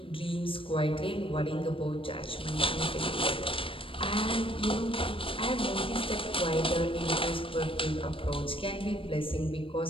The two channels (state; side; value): late; right; 0.26 ms